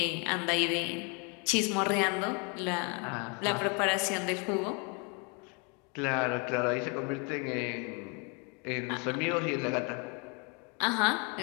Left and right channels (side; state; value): right; quieter; 34.0 dB